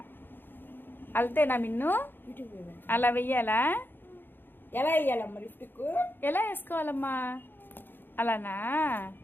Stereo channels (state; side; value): late; right; 0.098 ms